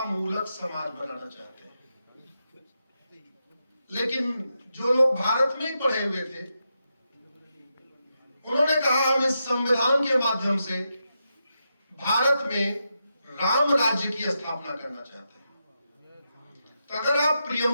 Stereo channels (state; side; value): inverted; both; correlation -0.86